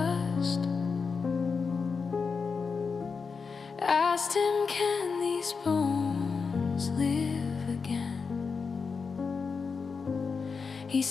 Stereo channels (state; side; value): quieter; right; 5.2 dB